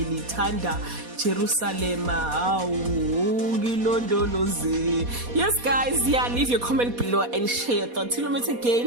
Jerusalem. Yes guys, leave your comment below and share your thoughts. Till we meet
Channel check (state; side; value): late; left; 4.2 ms